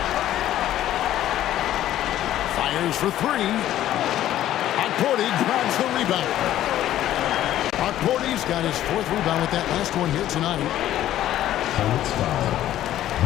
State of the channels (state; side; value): quieter; right; 12.8 dB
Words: Fires for 3. Huckporty grabs the rebound. Huckporty's got his 4th rebound with that last one here tonight. Hornets foul.